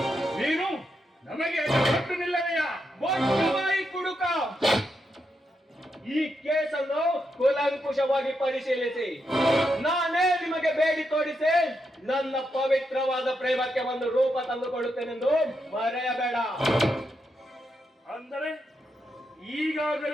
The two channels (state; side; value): normal; both; correlation 0.83